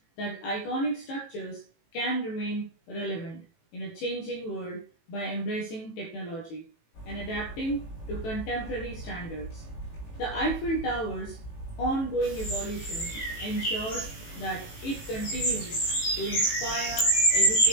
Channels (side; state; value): right; late; 18 ms